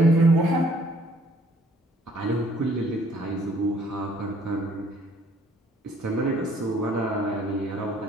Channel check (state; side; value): normal; both; correlation 0.61